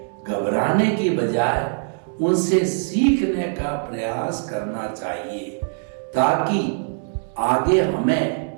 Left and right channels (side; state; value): left; silent; digital silence